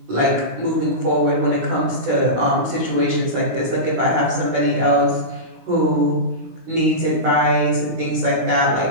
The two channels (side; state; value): left; late; 17 ms